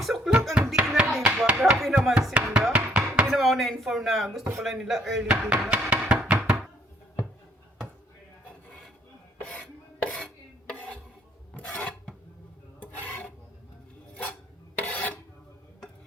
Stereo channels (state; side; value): normal; both; correlation 0.65